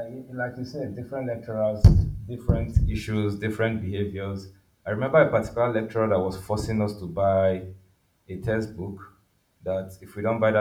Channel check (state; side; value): identical; both; correlation 1.00